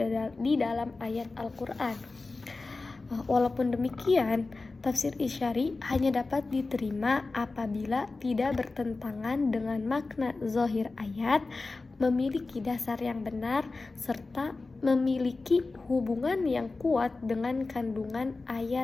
di dalam ayat Al-Quran. Walaupun demikian, tafsir isyari hanya dapat diterima apabila tidak bertentangan dengan makna zahir ayat, memiliki dasar yang benar serta memiliki hubungan yang kuat dengan kandungan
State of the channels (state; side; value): quieter; right; 3.6 dB